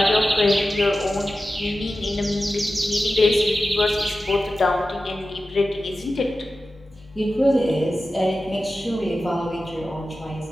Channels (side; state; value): both; normal; correlation 0.94